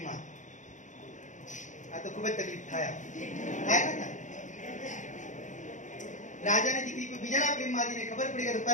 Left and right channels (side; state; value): right; late; 0.36 ms